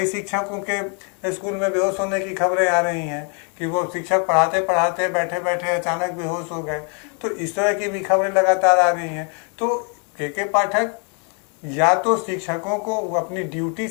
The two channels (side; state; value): right; quieter; 38.6 dB